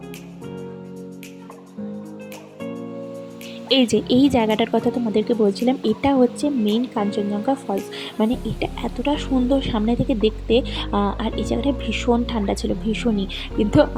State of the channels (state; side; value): identical; both; correlation 1.00